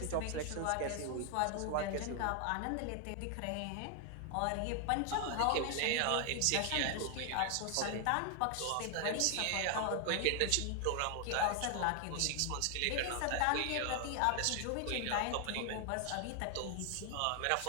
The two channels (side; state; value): both; different; correlation 0.00